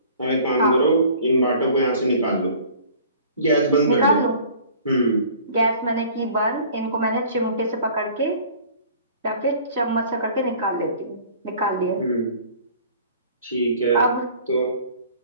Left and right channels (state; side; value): inverted; both; correlation -0.49